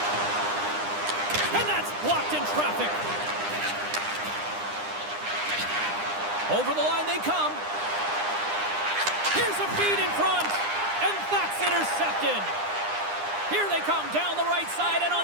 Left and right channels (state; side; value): late; left; 9.9 ms